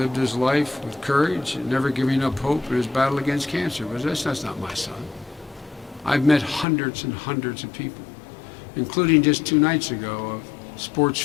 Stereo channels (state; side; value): drops out; right; at 6.7 s